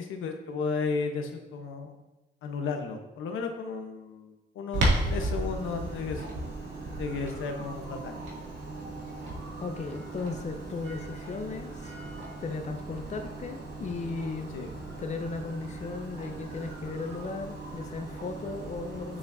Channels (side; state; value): both; normal; correlation 0.56